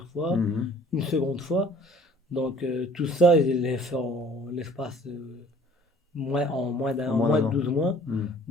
fois, Mhm. une seconde fois. Donc, tout ça, je l'ai fait en l'espace En en moins moins d'un de an. 12 mois. Mhm.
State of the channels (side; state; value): both; normal; correlation 0.52